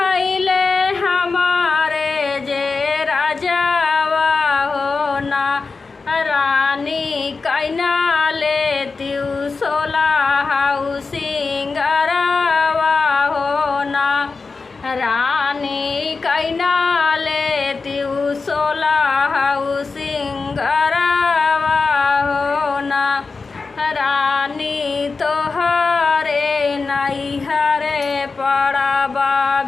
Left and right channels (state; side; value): quieter; right; 4.3 dB